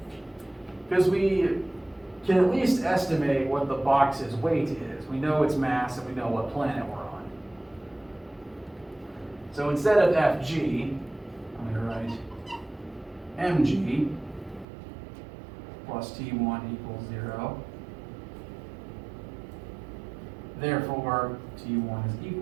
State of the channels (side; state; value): left; drops out; at 14.7 s